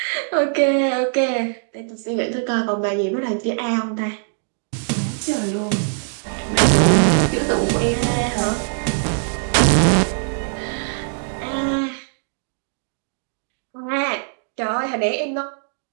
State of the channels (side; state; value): left; silent; 65 dB below the other